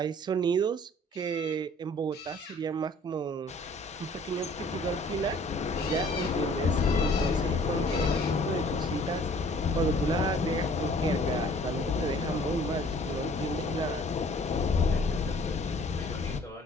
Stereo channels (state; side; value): normal; both; correlation 0.54